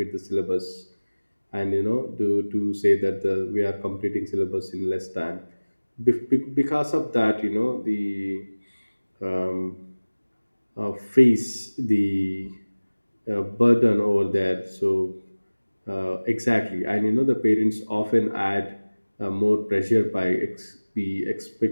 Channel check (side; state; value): both; inverted; correlation -1.00